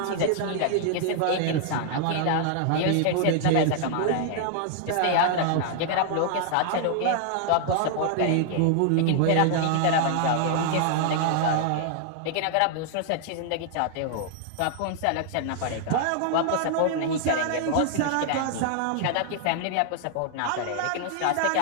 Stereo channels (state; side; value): different; both; correlation -0.01